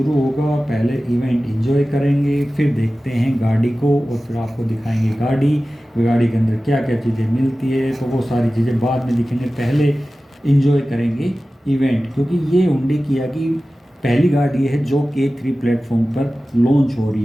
होगा, पहले इवेंट एंजॉय करेंगे, फिर देखते हैं गाड़ी को और फिर आपको दिखाएंगे गाड़ी के अंदर क्या क्या चीज़ें मिलती है। तो वो सारी चीज़ें बाद में दिखेंगे, पहले एंजॉय करेंगे इवेंट, क्योंकि ये हुंडई किया की पहली गाड़ी है जो K3 प्लेटफॉर्म पर लॉन्च हो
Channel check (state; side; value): normal; both; correlation 0.96